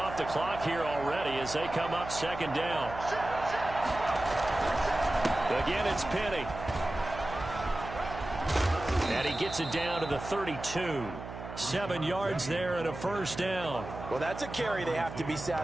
the clock here already as they come up 2nd down. Again, it's Penny. And he gets it down to the 32. 7 yards there and a first down. Well, that's a carry they have to be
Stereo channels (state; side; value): noise; right; hum, 11 dB below the sound